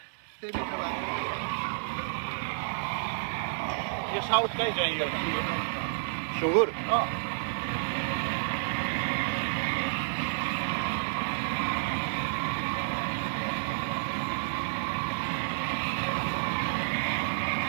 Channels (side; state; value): left; silent; digital silence